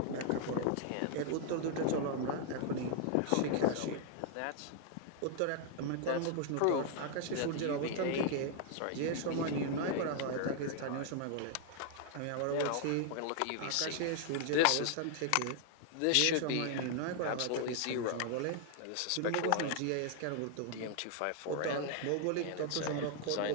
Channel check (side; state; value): both; different; correlation 0.00